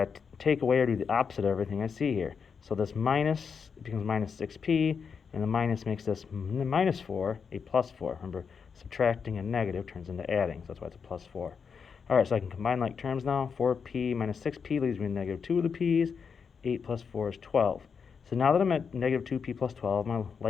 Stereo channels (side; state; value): right; quieter; 6.1 dB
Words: to take away or do the opposite of everything I see here. So this minus becomes minus 6p, and the minus makes this minus 4 a plus 4. Remember, subtracting a negative turns into adding, so that's why it's a plus 4. All right, so I can combine like terms now. 4p minus 6p leaves me negative 2 of the p's. 8 plus 4 is 12. So now that I'm at negative 2p plus 12, my